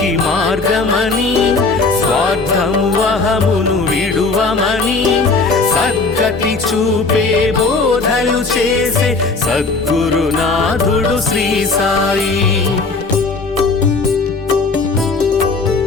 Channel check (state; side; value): quieter; right; 3.9 dB